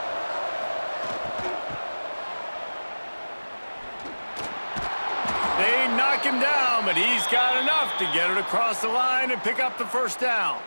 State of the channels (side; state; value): both; inverted; correlation -1.00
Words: They knock him down, but he's got enough to get it across the line and pick up the first down.